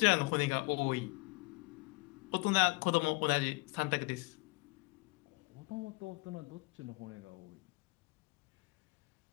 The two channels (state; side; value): quieter; right; 26.1 dB